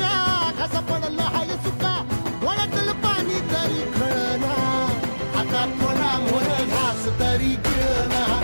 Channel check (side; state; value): both; inverted; correlation -1.00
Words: कसा पडलं हाय सुका वळतल पाणी तरी कळना आता थोडा मोर घास तरी गिळना